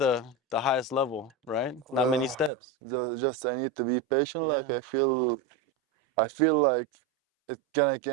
highest level, right? Not many steps. Just I need to be patient. Like Yeah. I feel like it gonna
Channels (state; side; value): drops out; left; at 2.5 s